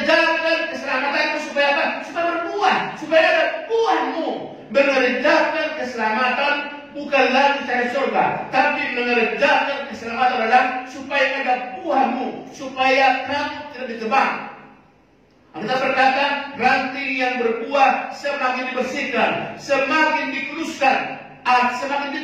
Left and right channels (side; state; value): both; identical; correlation 1.00